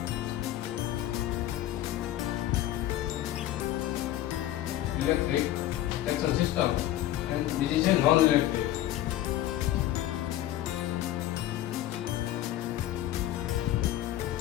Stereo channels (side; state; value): right; quieter; 13.5 dB